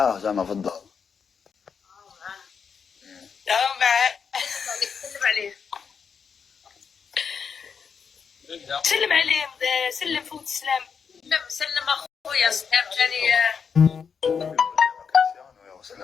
زعما في الدار. معاه. سلم عليه. سلم عليه، سلم فوت السلام. سلم اخويا سلام ثاني.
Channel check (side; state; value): right; quieter; 6.4 dB